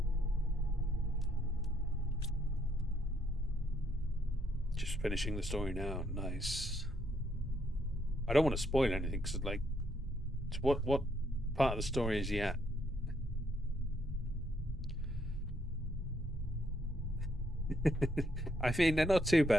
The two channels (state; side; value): normal; both; correlation 0.73